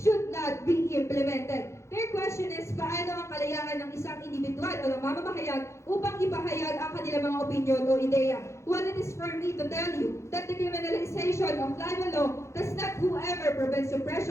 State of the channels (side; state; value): right; late; 0.14 ms